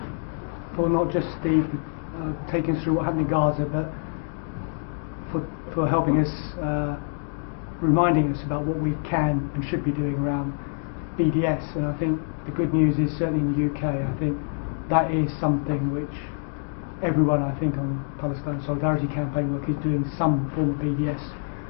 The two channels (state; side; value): silent; right; digital silence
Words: not just the taking us through what happened in Gaza, but for helping us, reminding us about what we can and should be doing around BDS. And I think the good news is, certainly in the UK, I think that is something which everyone, I think, on Palestine Solidarity Campaign work is doing some form of BDS.